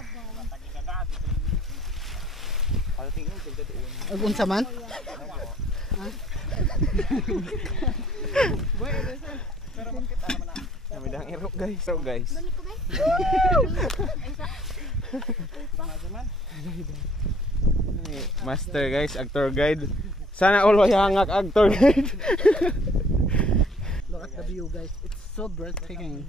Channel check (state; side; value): normal; both; correlation 0.57